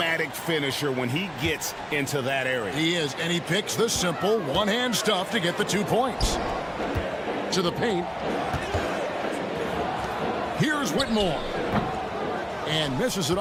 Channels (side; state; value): both; identical; correlation 1.00